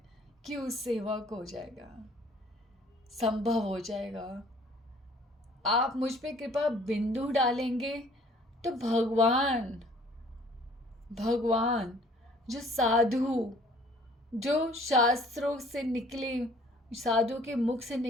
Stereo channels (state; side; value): normal; both; correlation 0.55